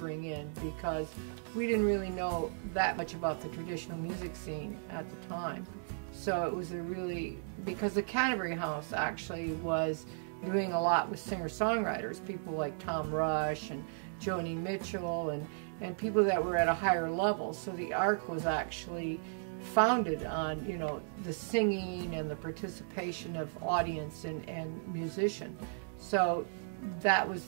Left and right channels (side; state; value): left; silent; digital silence